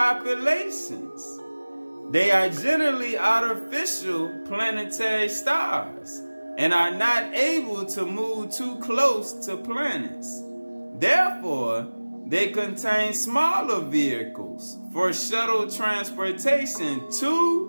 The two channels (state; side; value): inverted; both; correlation -1.00